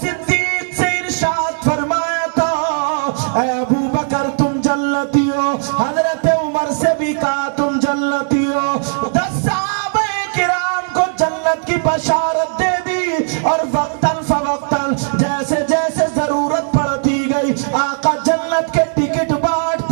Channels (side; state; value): left; silent; digital silence